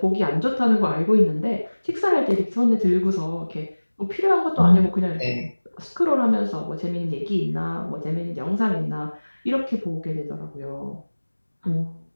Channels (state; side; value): inverted; both; correlation -1.00